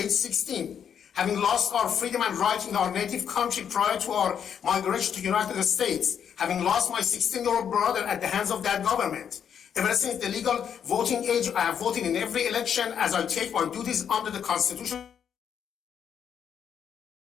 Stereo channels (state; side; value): quieter; right; 8.2 dB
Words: 16, having lost our freedom and right in our native country prior to our migration to the United States, having lost my 16-year-old brother at the hands of that government. Ever since the legal voting age, I have voted in every election as I take my duties under the Constitution.